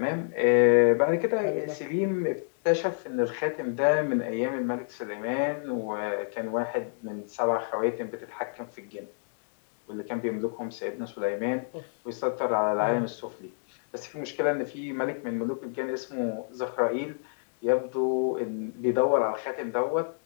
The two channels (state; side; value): silent; right; digital silence